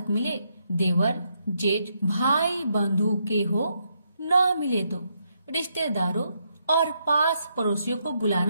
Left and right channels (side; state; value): both; inverted; correlation -0.78